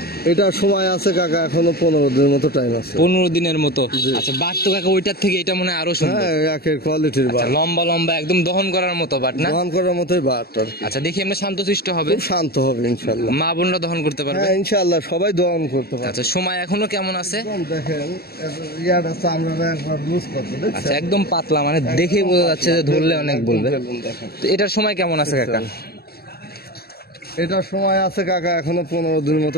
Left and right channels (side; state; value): right; late; 0.45 ms